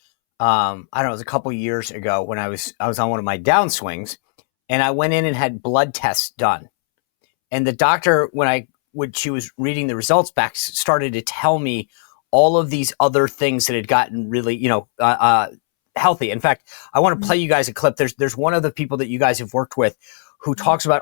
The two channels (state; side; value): silent; right; 67 dB below the other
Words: I don't know, it was a couple years ago when I was on one of my downswings, and I went in and had blood tests done. And the doctor, when she was reading the results back, started to tell me all of these other things that had gotten really, healthy. In fact, I want to play you guys a clip. There's one of the people that you guys have worked with who talks about